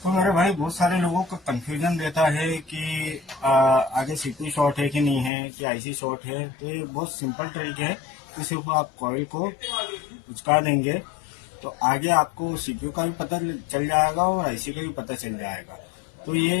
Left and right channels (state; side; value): drops out; right; at 5.3 s